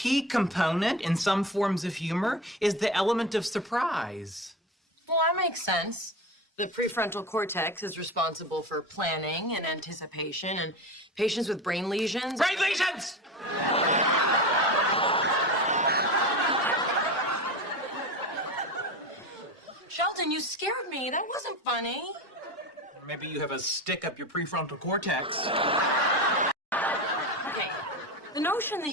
component in some forms of humor is the element of surprise. Well, that makes sense. The prefrontal cortex is responsible for planning and anticipation, and patients with brain lesions. Brain lesions! Sheldon, you scared me. That wasn't funny. Maybe you have a stick up your prefrontal cortex. Okay. The notion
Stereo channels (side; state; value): both; normal; correlation 0.26